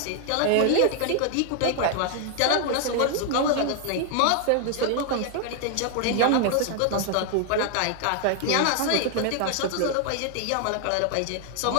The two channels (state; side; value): different; both; correlation 0.00